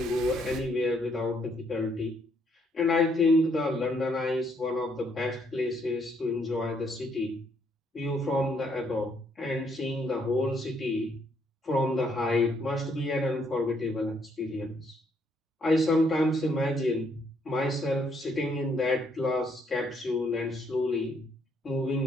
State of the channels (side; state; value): both; normal; correlation 0.71